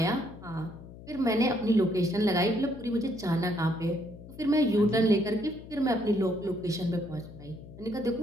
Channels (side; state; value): left; noise; hum, 16 dB below the sound